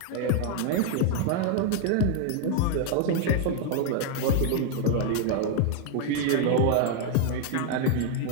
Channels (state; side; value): different; both; correlation 0.01